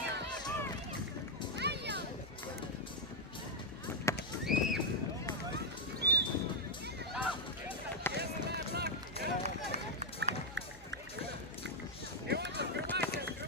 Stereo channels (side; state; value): both; normal; correlation -0.02